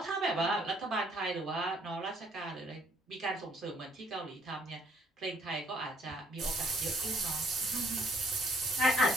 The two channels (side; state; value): both; normal; correlation 0.65